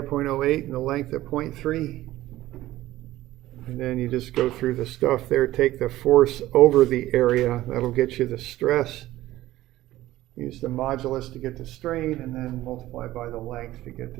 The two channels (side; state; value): left; quieter; 15.7 dB